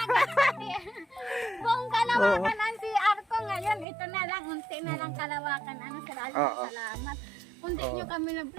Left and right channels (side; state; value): left; drops out; at 3.9 s